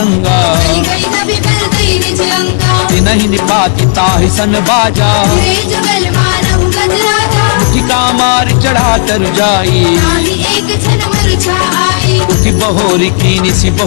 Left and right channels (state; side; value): silent; right; 67 dB below the other